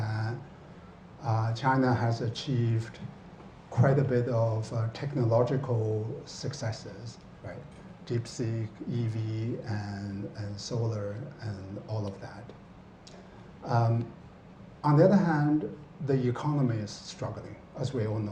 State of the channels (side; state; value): both; identical; correlation 1.00